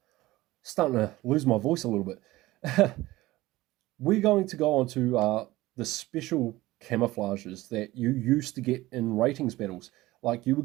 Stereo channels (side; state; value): left; quieter; 18.1 dB